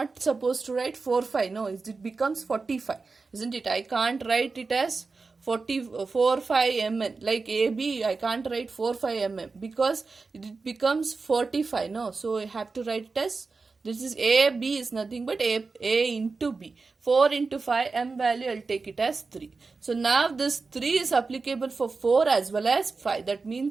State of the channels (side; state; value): left; quieter; 4.2 dB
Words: supposed to write 4 5. No, it becomes 45, isn't it? I can't write it as 4 5 mn like AB. I can't write 4 5 mm because it becomes 45. No, so I have to write it as, this is a, b is nothing but a into b. 4 into 5 m value, I'll take it as 3. So now this 3 is applicable for 4 as well as 5. That